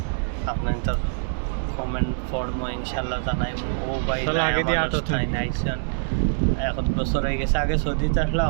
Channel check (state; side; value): silent; left; digital silence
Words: আপনাদের কমেন্ট পড়বো, ইনশাল্লাহ জানাইব। ও ভাই আইসেন 1 বছর হয়ে গেছে, আগে সৌদিতে আসলে